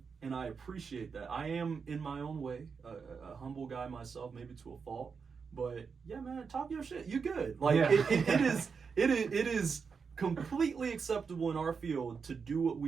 and I appreciate that. I am, in my own way, a humble guy myself, maybe to a fault. But yeah, man, talk your shit. You good? Like it is completely acceptable in our field to do what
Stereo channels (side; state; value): left; quieter; 5.6 dB